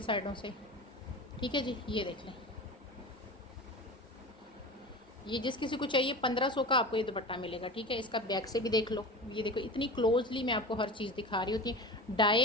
साइडों से। ठीक है जी, ये देख लें, ये जिस किसी को चाहिए 1500 का आपको ये दुपट्टा मिलेगा। ठीक है, इसका बैक से भी देख लो, ये देखो इतनी क्लोजली मैं आपको हर चीज़ दिखा रही होती है।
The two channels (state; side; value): normal; both; correlation 0.32